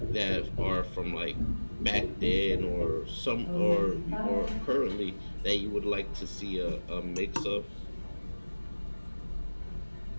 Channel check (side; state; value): both; inverted; correlation -1.00